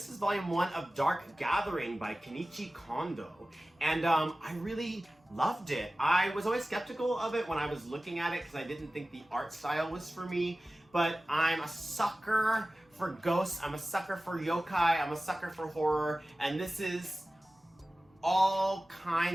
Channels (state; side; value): normal; both; correlation 0.96